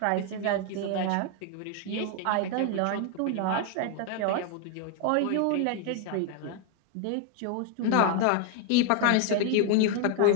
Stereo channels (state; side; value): different; both; correlation 0.00